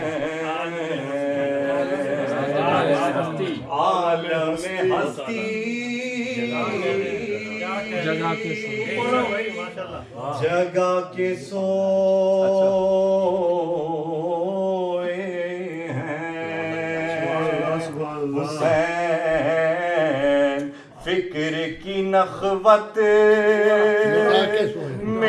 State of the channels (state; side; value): identical; both; correlation 1.00